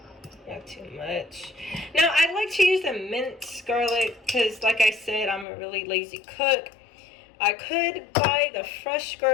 Not too much. Now, I like to use the minced garlic because, like I said, I'm a really lazy cook. I could buy the fresh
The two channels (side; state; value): right; drops out; at 5.5 s